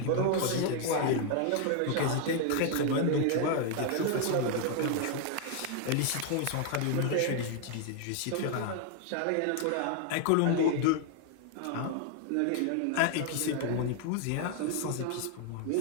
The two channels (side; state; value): both; different; correlation 0.00